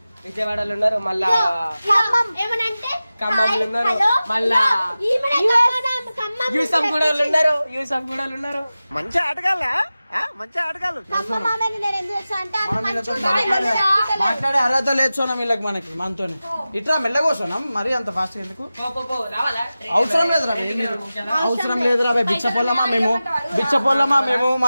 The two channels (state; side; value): inverted; both; correlation -0.95